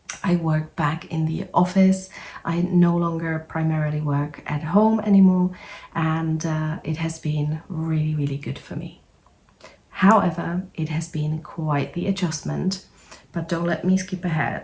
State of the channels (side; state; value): both; identical; correlation 1.00